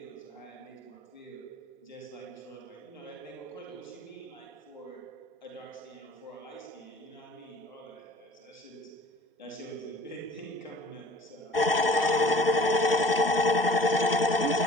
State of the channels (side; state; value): both; normal; correlation 0.49